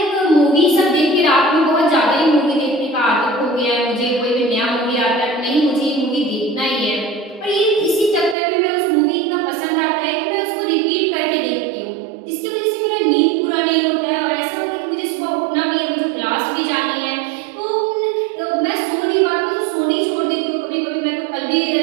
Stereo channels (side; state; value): left; drops out; at 8.3 s